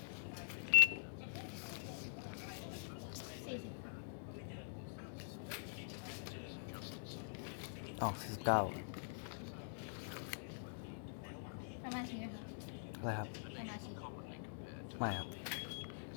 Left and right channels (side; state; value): right; silent; digital silence